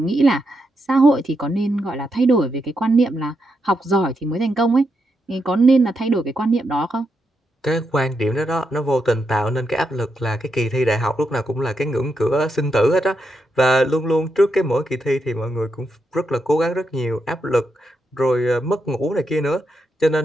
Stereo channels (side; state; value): both; normal; correlation 0.83